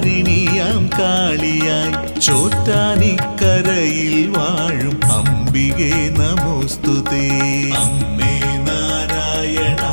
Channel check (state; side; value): inverted; both; correlation -1.00